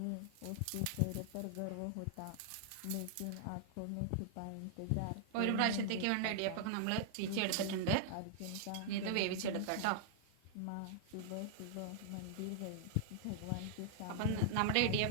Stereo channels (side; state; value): both; different; correlation -0.01